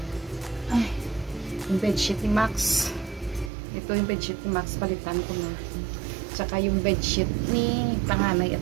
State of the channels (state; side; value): drops out; left; at 3.5 s